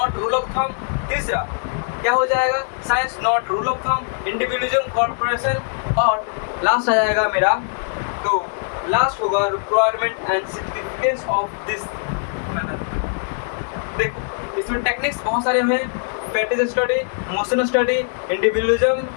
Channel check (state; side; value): silent; right; digital silence